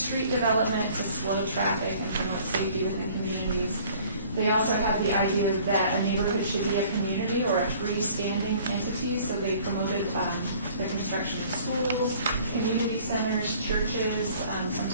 development to slow traffic and promote safety within communities. They also had the idea that a neighborhood should be a community or a freestanding entity, so they promoted the construction of schools, community centers, churches,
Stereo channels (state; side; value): inverted; both; correlation -0.53